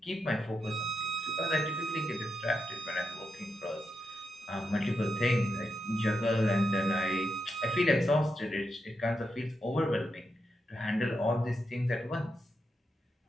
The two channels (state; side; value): normal; both; correlation 0.85